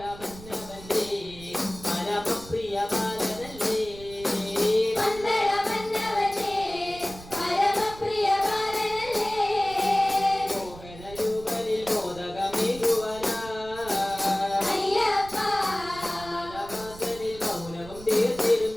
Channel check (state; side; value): noise; right; rumble, 16 dB below the sound